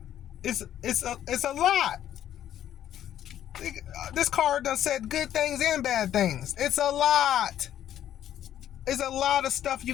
It's a lot. This card done said good things and bad things. It's a lot. It's a lot of stuff you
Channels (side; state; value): right; quieter; 11.2 dB